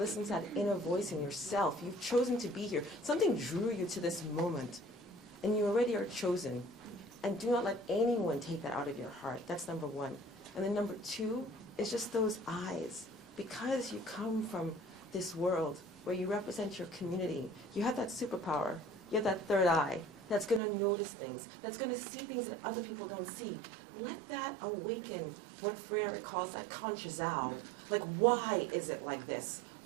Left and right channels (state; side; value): drops out; left; at 20.6 s